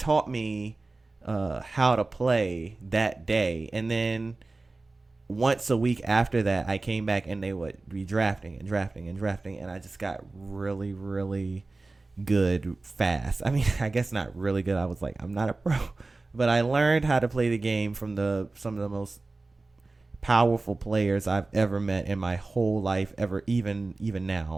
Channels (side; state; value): left; quieter; 3.4 dB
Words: me how to play that day. And then once a week after that I came back and they would be drafting and drafting and drafting, and I just got really, really good fast. I mean, I guess not really good. I was like, I'm not a pro, but I learned how to play the game from the some of the most powerful players I've ever met in my whole life, ever, even